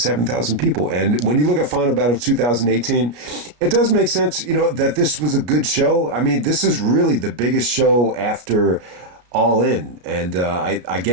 people. And when you look at Final Battle 2018, it does make sense, that this was a good show. I mean, this is really the biggest show after All In. And I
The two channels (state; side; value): late; left; 33 ms